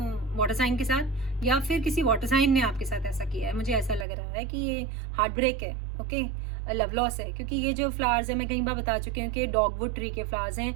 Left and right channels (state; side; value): drops out; left; at 4.0 s